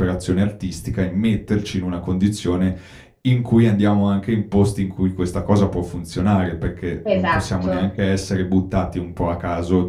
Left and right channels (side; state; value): both; identical; correlation 1.00